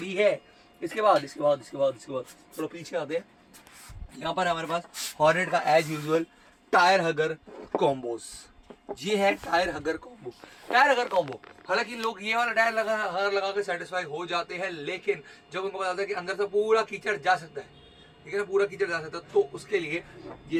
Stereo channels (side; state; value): both; identical; correlation 1.00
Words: है। इसके बाद थोड़ा पीछे आते हैं, यहाँ पर हमारे पास हॉर्नेट का एज यूजुअल टायर हगर कॉम्बोज। ये है टायर हगर कॉम्बो। टायर हगर कॉम्बो, हालांकि लोग ये वाला टायर लगा के सेटिस्फाई हो जाते हैं, लेकिन जब उनको पता है कि अंदर से पूरा कीचड़ जा सकता है, ठीक है ना, पूरा कीचड़ जा सकता है, तो उसके लिए